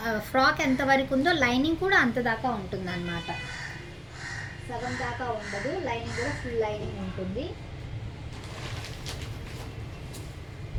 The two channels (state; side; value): identical; both; correlation 1.00